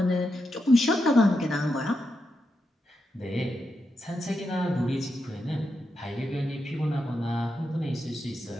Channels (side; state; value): both; normal; correlation 0.85